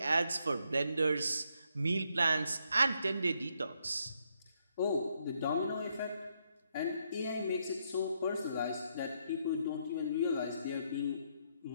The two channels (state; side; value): inverted; both; correlation -0.76